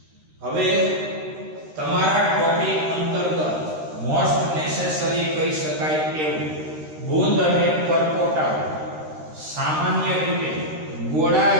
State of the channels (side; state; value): left; late; 13 ms